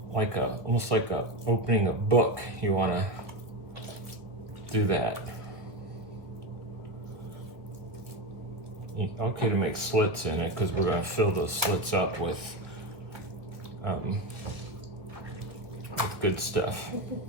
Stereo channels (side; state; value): left; late; 1.4 ms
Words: almost like opening a book, you want to do that. Okay to make slits in it, because we're going to fill those slits up with good stuff.